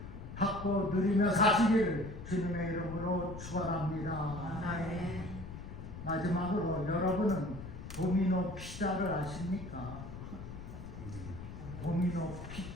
받고 누리며 사시기를 주님의 이름으로 축원합니다. 아멘. 마지막으로 여러분은 도미노 피자를 아십니까? 도미노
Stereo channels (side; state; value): left; noise; rumble, 10 dB below the sound